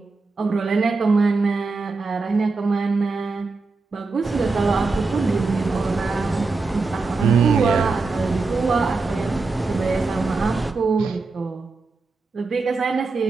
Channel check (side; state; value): left; quieter; 3.9 dB